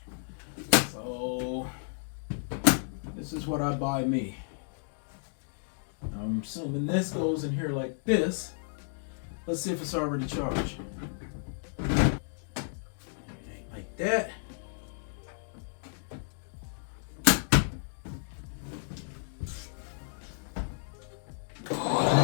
So this is what I buy me. I'm assuming this goes in here like this. Let's see if it's already charged. like that.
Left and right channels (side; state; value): right; silent; digital silence